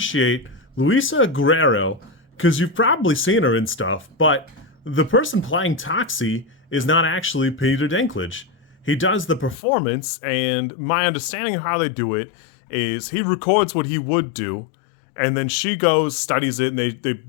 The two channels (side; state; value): right; drops out; at 9.6 s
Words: Luisa Guerreiro, because you've probably seen her in stuff, but the person playing Toxie is not actually Peter Dinklage. He does the performance, and my understanding of how they do it is he records what he would do, and then she goes, studies it, and they